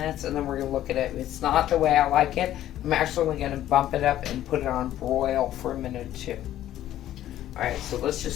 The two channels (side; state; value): right; quieter; 12.7 dB